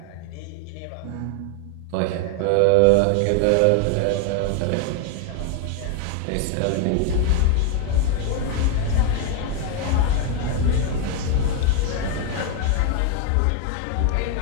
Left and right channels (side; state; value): both; different; correlation 0.01